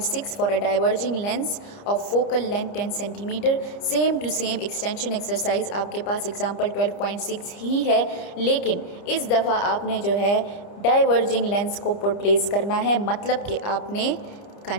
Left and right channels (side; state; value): right; late; 30 ms